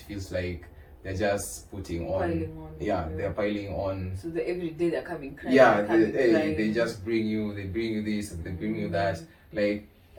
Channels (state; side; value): identical; both; correlation 1.00